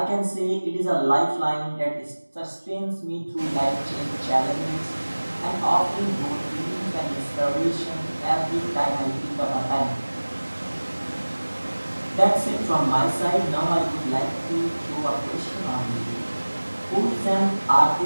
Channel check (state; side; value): inverted; both; correlation -1.00